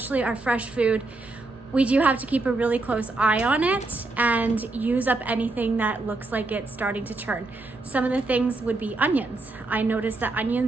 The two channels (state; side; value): quieter; left; 3.2 dB